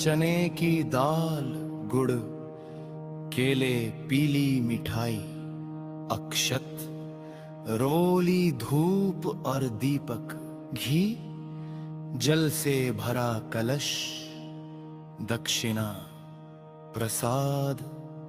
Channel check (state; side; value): identical; both; correlation 1.00